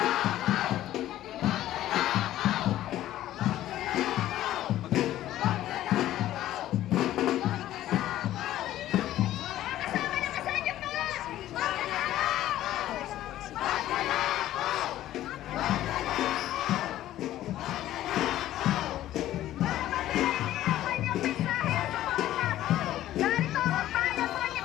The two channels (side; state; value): right; quieter; 13.6 dB